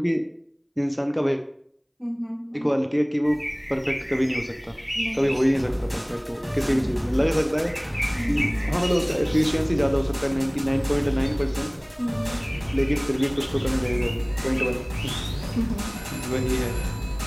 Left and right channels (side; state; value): both; identical; correlation 1.00